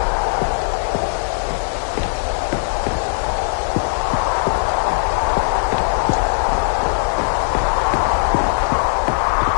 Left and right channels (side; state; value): right; silent; 67 dB below the other